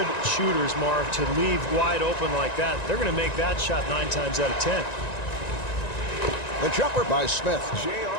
shooters, Marv, to leave wide open like that. They're going to make that shot 9 times out of 10. The jumper by Smith.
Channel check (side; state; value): right; late; 1.9 ms